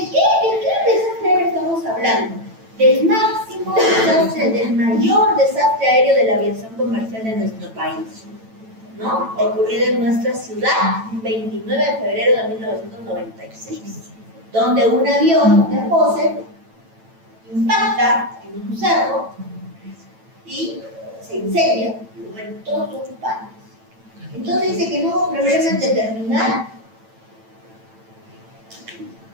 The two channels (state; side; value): late; left; 9.0 ms